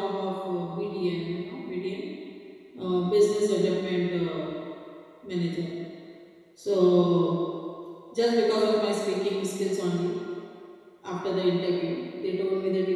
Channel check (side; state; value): both; identical; correlation 1.00